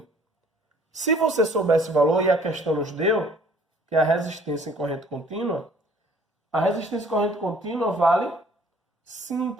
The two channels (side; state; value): both; normal; correlation 0.56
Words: Se você souber esse valor, e a questão nos deu, que é a resistência em corrente contínua, a resistência em corrente contínua vale